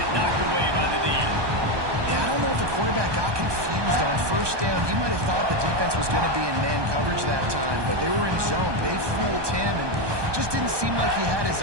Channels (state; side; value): late; left; 1.2 ms